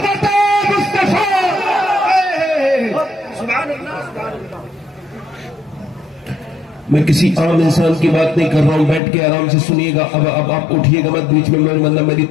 میں کسی عام انسان کی بات نہیں کر رہا ہوں، بیٹھ کے آرام سے سنیے گا. اب آپ اٹھیے گا مت بیچ میں، میری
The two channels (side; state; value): right; drops out; at 9.0 s